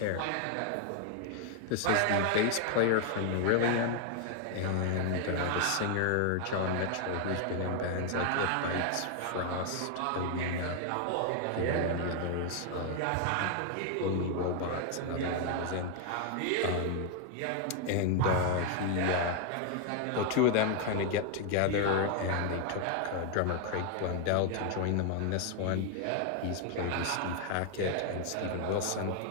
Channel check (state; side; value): different; both; correlation 0.00